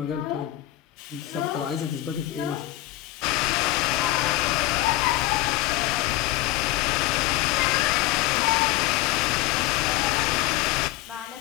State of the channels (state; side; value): quieter; right; 16.4 dB